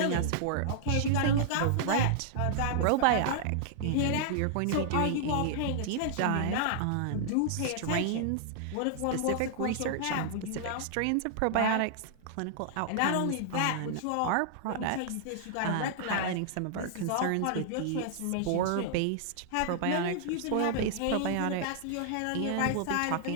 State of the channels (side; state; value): both; different; correlation -0.01